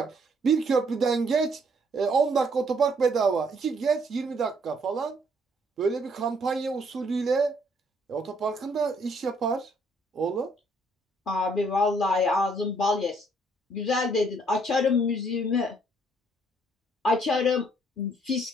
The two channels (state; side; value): normal; both; correlation 0.66